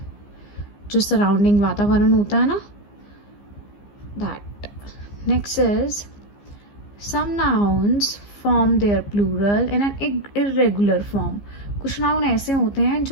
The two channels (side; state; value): right; late; 15 ms